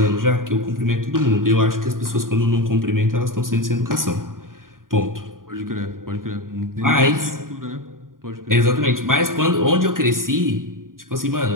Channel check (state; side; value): late; left; 0.91 ms